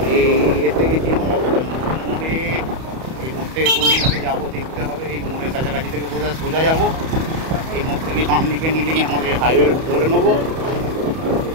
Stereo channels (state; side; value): late; left; 31 ms